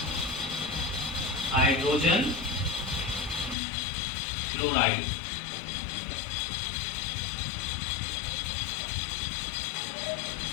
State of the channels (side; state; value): right; drops out; at 3.6 s